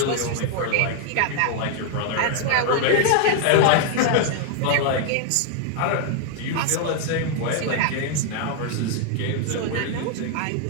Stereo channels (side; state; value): both; different; correlation 0.00